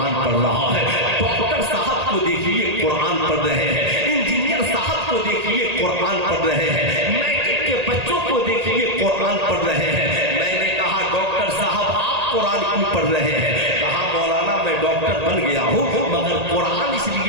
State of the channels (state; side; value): late; left; 1.8 ms